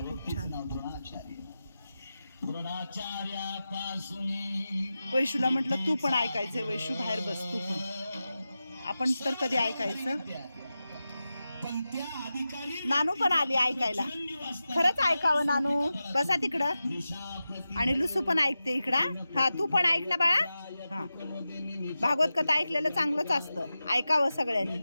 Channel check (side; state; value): both; inverted; correlation -0.93